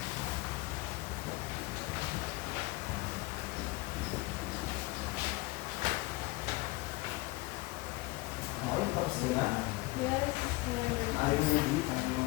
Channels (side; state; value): right; quieter; 22.1 dB